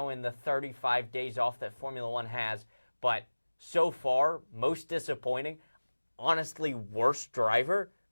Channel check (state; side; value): inverted; both; correlation -1.00